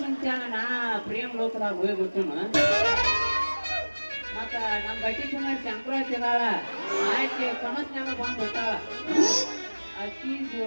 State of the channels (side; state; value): both; inverted; correlation -1.00